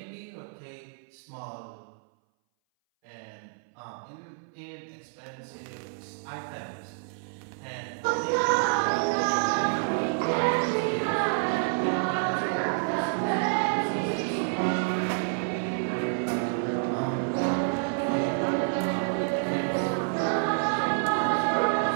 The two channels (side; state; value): left; silent; 59 dB below the other